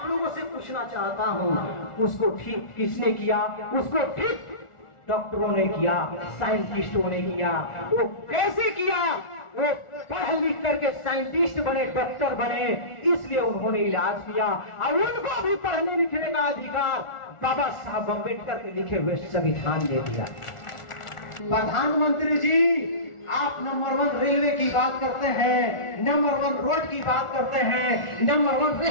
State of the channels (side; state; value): right; late; 1.4 ms